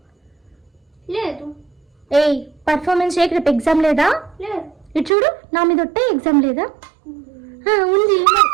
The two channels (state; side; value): drops out; left; at 5.1 s